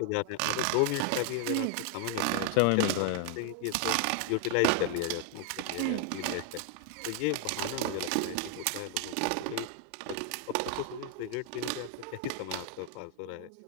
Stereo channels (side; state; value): both; different; correlation 0.00